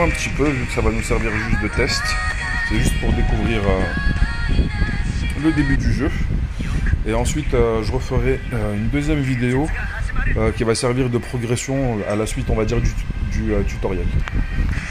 un petit peu vu que ça va nous servir juste de test. C'est juste pour découvrir le début du jeu. Et ensuite je referai une deuxième vidéo qui va servir de progression à la suite on va dire du tutoriel.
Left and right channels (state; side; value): identical; both; correlation 1.00